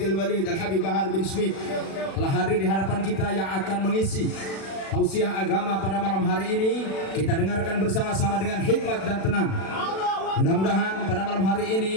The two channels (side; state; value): right; late; 36 ms